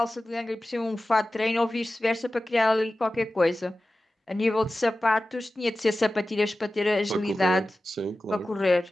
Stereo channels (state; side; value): normal; both; correlation 0.95